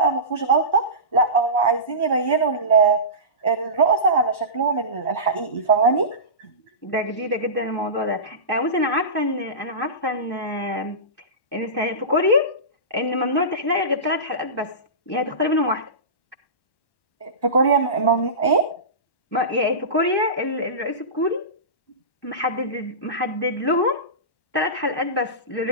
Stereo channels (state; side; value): late; right; 1.1 ms